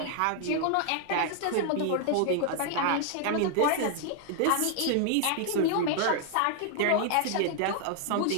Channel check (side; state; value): both; different; correlation 0.00